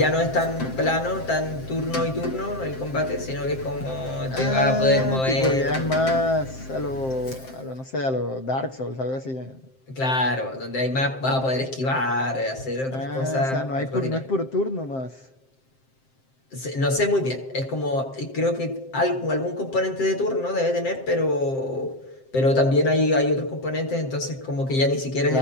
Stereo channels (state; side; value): late; right; 7.6 ms